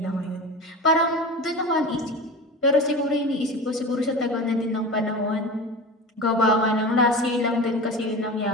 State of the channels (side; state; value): both; normal; correlation 0.30